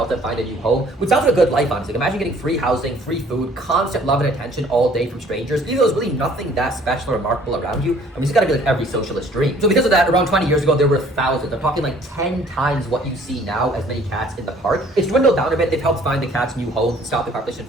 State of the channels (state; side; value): normal; both; correlation 0.56